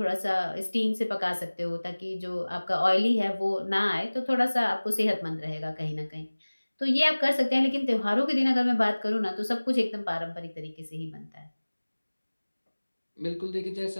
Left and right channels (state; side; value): inverted; both; correlation -1.00